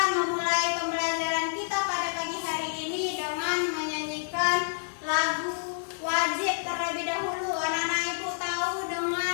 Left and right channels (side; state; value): right; silent; digital silence